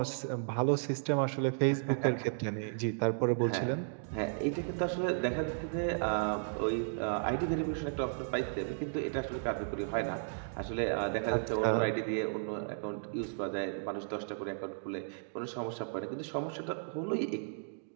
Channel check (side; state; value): left; silent; digital silence